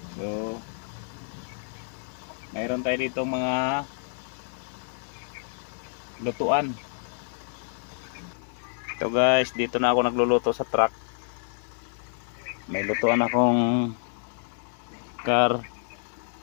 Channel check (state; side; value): silent; right; digital silence